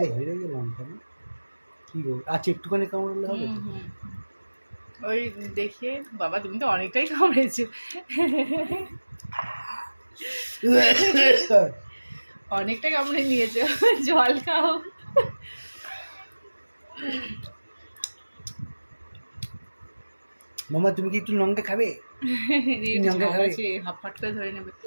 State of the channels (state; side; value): inverted; both; correlation -1.00